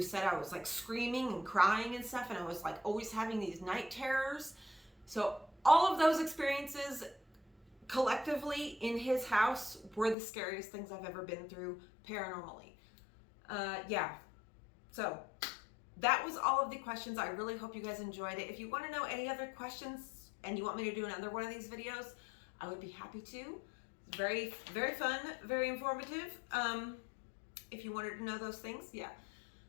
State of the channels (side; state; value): right; drops out; at 10.2 s